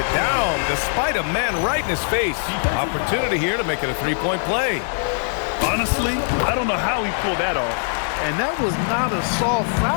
down despite a man right in his face. Opportunity here to make it a three-point play. Honestly, I don't know how he pulled that off. And that was not a soft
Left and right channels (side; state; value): right; silent; digital silence